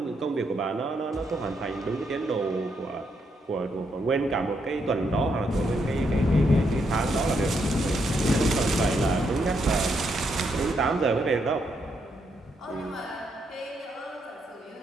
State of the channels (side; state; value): both; normal; correlation 0.78